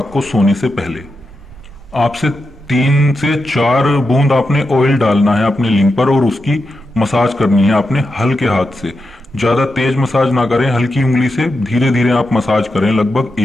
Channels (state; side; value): normal; both; correlation 0.88